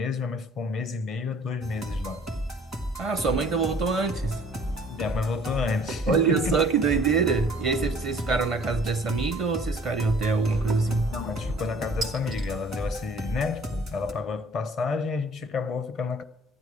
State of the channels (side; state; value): both; normal; correlation 0.54